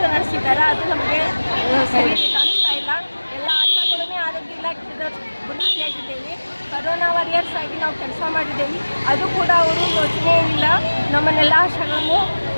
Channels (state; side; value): inverted; both; correlation -1.00